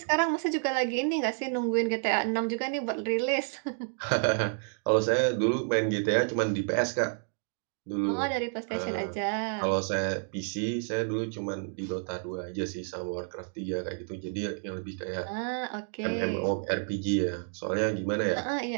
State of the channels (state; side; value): silent; left; 58 dB below the other